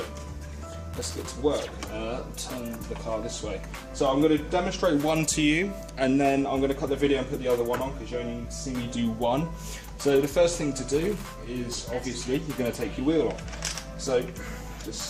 let's get to work. Turn the car this way. So I'm going to demonstrate one to you, and then I'm going to cut the video and put the other one on, because you only see me do one. So the first thing to do is, obviously, you're going to take your wheel off. So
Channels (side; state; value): both; identical; correlation 1.00